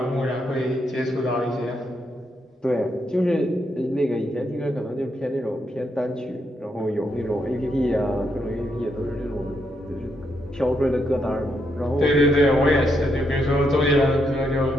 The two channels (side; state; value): both; normal; correlation 0.79